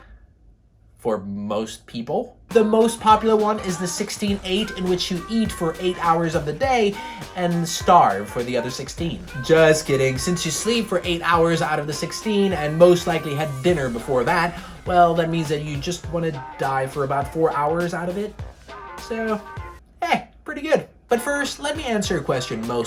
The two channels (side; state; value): both; identical; correlation 1.00